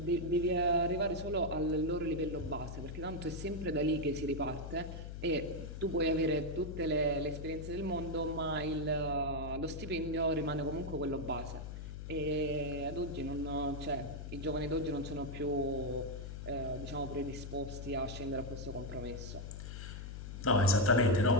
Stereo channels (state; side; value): noise; left; hum, 8 dB below the sound